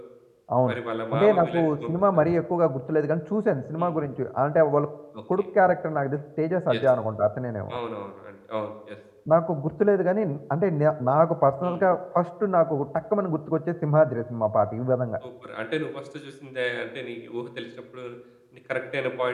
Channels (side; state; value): both; identical; correlation 1.00